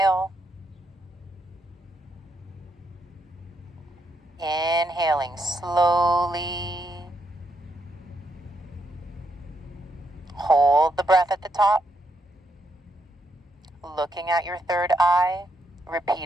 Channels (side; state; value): both; normal; correlation 0.78